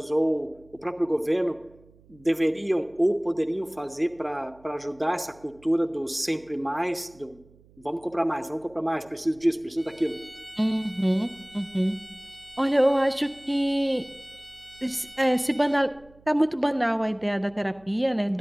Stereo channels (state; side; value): noise; right; hum, 27 dB below the sound